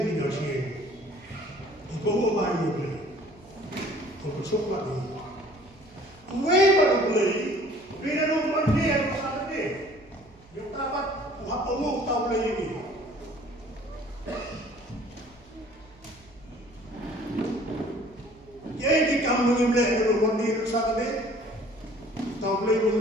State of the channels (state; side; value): noise; right; hum, 27 dB below the sound